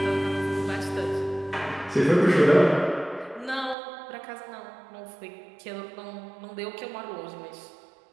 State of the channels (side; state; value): left; drops out; at 3.8 s